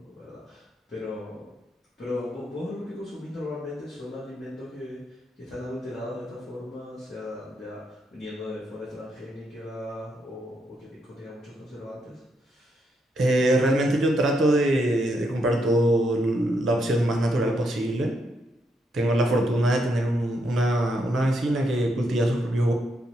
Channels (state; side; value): normal; both; correlation 0.78